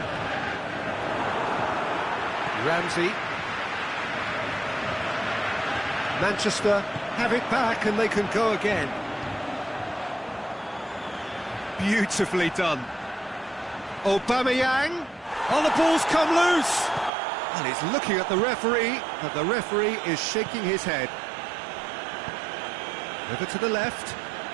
Ramsey. Manchester have it back and they can go again. Beautifully done. Aubameyang. Oh, the ball's come loose. And he's looking at the referee, but the referee is shaking his head. Over to the left.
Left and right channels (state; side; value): drops out; left; at 17.1 s